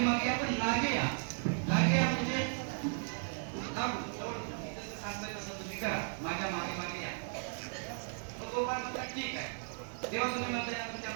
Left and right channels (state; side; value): silent; left; 54 dB below the other